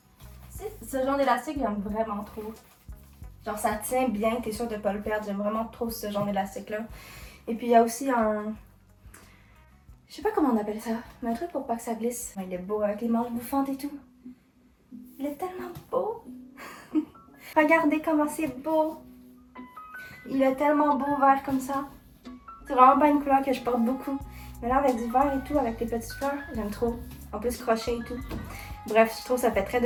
Ce genre d'élastique, j'aime vraiment trop. Genre ça tient bien. T'es sûr de pas le perdre. J'aime vraiment trop ce genre d'élastique-là. Et puis il y a aussi un... Je sais pas comment on appelle ça. Mais un truc pour pas que ça glisse. Il est beau avec les manches bouffantes et tout. Il est tellement beau. Regardez comment c'est beau. Il est tellement beau vert comme ça. C'est vraiment pas une couleur que je porte beaucoup. Mais là avec du vert et tout, avec les petites fleurs, j'aime trop. En plus crochet et tout. Bref, je trouve que ça fait très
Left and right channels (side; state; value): both; identical; correlation 1.00